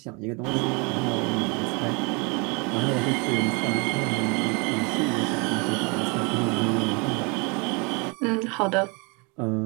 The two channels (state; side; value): quieter; left; 31.0 dB